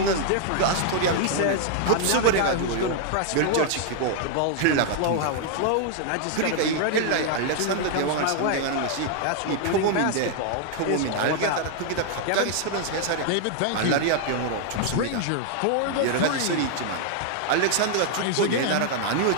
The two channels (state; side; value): different; both; correlation 0.00